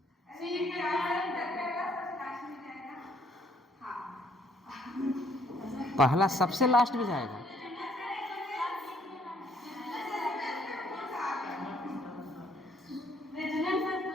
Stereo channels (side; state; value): both; normal; correlation 0.66